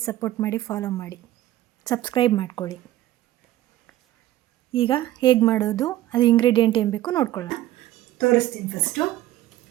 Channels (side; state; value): left; quieter; 14.6 dB